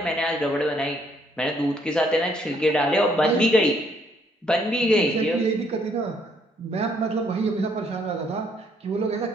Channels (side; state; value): both; normal; correlation 0.68